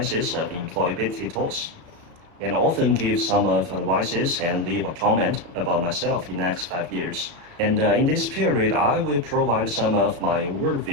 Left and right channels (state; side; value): late; left; 35 ms